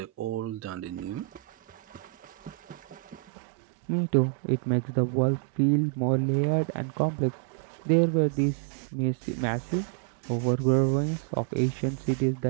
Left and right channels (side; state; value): left; drops out; at 3.2 s